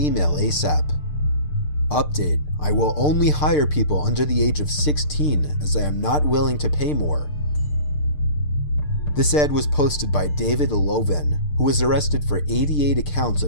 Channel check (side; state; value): right; late; 6.7 ms